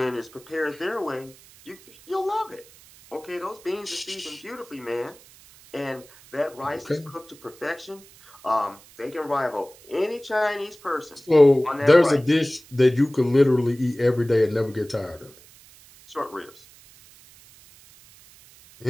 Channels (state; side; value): noise; right; hiss, 24 dB below the sound